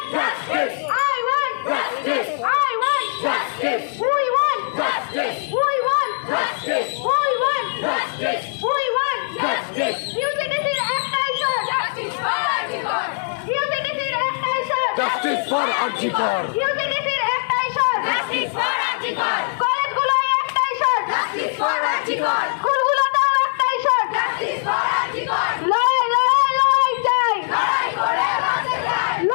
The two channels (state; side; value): silent; right; 58 dB below the other